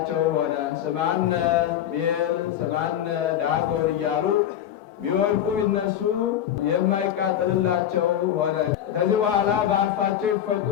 ሆነ። ስማነ ቤል ስማነ ዳጎን እያሉ ቢወድቁ ቢነሱ የማይቃጠልላቸው ሆነ። ከዚህ በኋላ በአፋቸው ይፈቁ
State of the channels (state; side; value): quieter; right; 10.5 dB